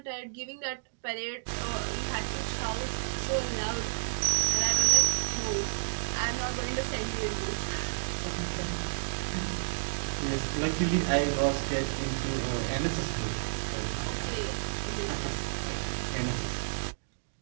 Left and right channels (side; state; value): left; silent; digital silence